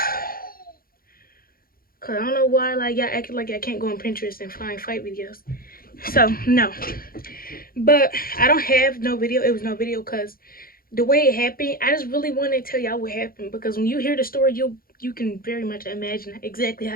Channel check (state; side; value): late; right; 0.42 ms